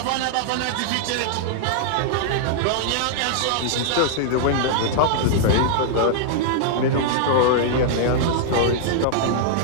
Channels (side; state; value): both; different; correlation -0.01